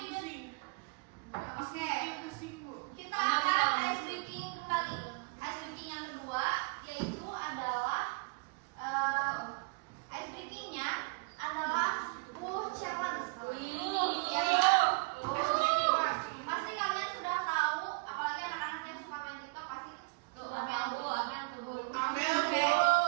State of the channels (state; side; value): quieter; left; 30.1 dB